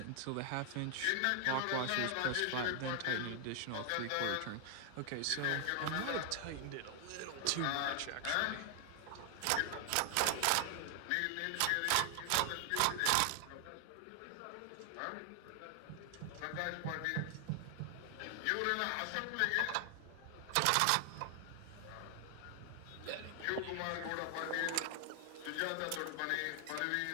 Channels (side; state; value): both; different; correlation 0.00